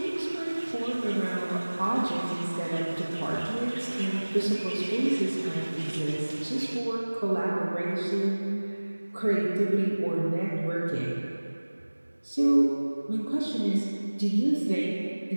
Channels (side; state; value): both; inverted; correlation -1.00